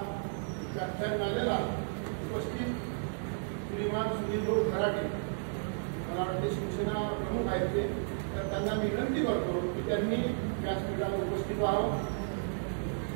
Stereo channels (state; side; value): silent; left; digital silence